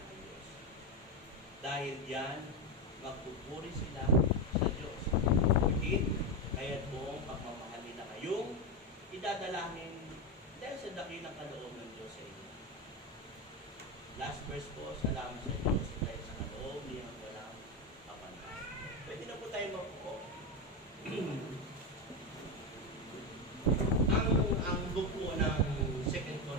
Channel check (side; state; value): both; normal; correlation 0.12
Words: Diyos. Dahil diyan, magpupuri sila sa Diyos. Higit, kaya't buong pagmamahal nila kayong idadalahin dahil sa dakilang kaloob ng Diyos sa inyo. Last verse po, salamat sa Diyos dahil sa kaloob niyang walang kapanay. Pwede na po tayo mapuko. ang book po ng 2